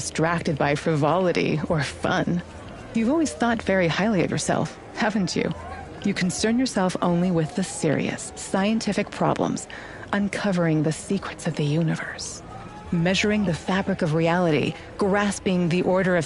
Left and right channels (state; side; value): identical; both; correlation 1.00